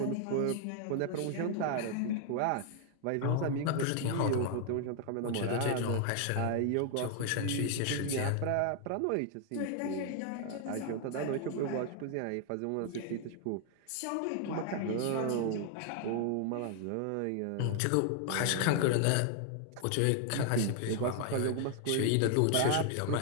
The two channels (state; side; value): different; both; correlation 0.00